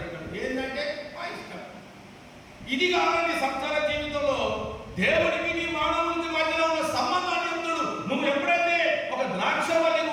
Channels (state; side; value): identical; both; correlation 1.00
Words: ఏంటంటే మా ఇష్టం. ఇది కాదండి సంసార జీవితంలో దేవుడికి నీ మానవునికి మధ్యలో ఉన్న సంబంధాన్ని చెప్తాడు. నువ్వు ఎప్పుడైతే ఒక ద్రాక్ష వల్లి